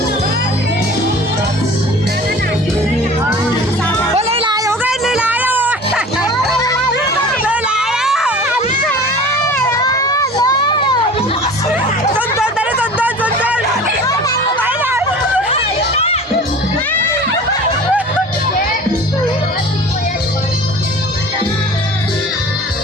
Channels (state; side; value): normal; both; correlation 0.41